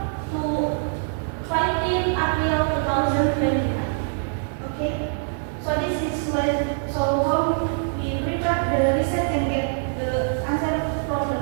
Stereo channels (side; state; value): left; silent; digital silence